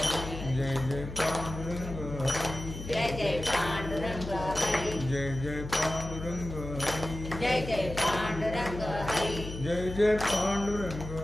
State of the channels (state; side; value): noise; left; hum, 9 dB below the sound